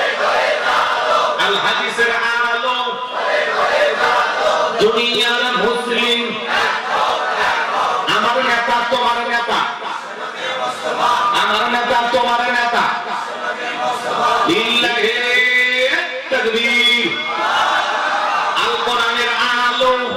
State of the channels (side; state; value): both; identical; correlation 1.00